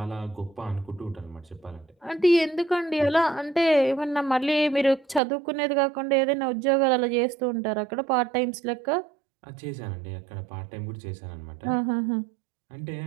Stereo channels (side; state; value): left; drops out; at 5.2 s